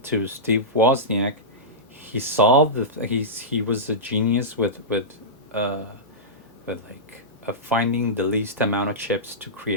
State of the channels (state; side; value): normal; both; correlation -0.15